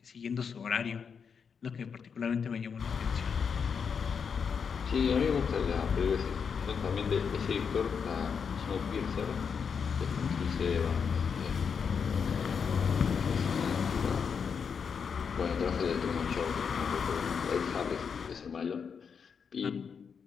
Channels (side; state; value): right; quieter; 6.4 dB